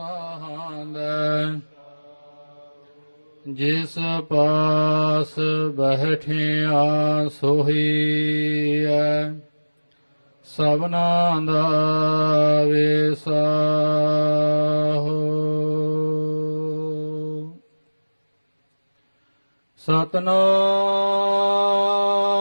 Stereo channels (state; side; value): inverted; both; correlation -1.00